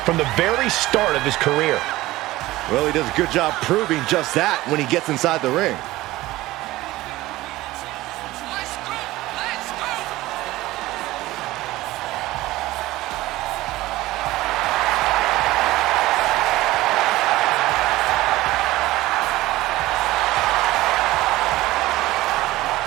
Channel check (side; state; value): left; quieter; 17.7 dB